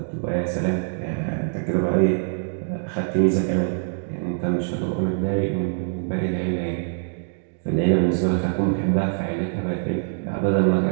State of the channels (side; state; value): left; silent; digital silence